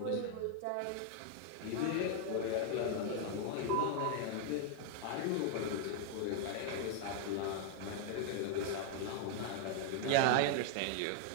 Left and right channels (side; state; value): both; different; correlation 0.00